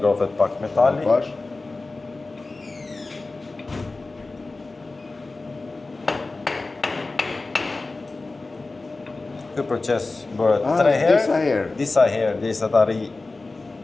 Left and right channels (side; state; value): right; quieter; 3.4 dB